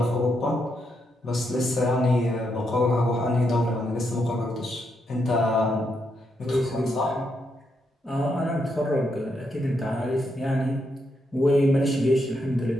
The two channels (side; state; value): both; normal; correlation 0.80